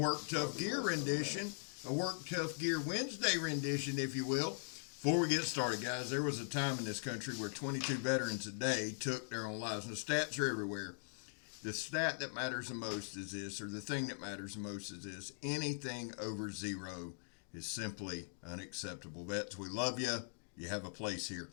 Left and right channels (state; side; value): silent; right; digital silence